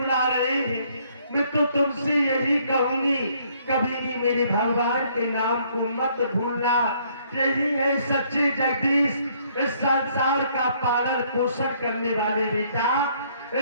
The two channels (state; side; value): inverted; both; correlation -0.65